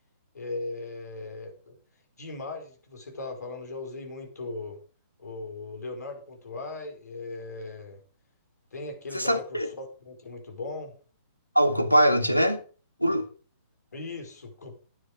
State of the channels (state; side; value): inverted; both; correlation -0.85